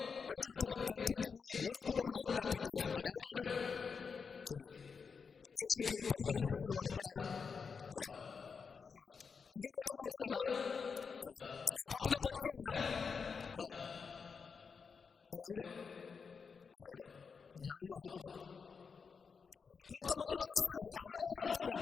అంటూ అతన్ని గద్దించి ఊరకుండమని ఆజ్ఞాపించాడు. ఆడెవడాడు తెలీదు. యేసు ప్రభు 12 మంది శిష్యులు వాడు ఒకడా? కాదు. ఇంకా పెద్దోడు ఎవడైనా? కాదు. ఆ పట్టణ బతికారా? కాదు. మరి ఎవరు? అడెవడో జనంలో ఆడుకోడు ఒకడో. కొంతమంది చేసే హడావుడి ఎలా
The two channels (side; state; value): right; quieter; 5.6 dB